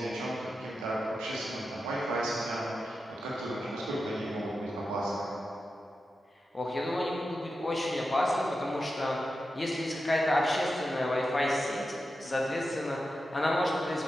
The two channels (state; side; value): normal; both; correlation 0.90